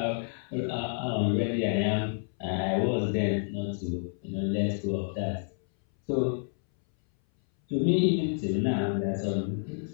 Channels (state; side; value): silent; right; 59 dB below the other